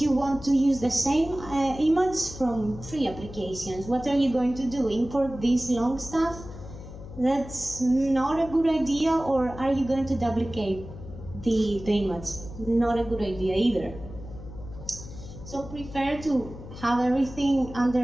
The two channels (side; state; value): left; noise; hum, 13 dB below the sound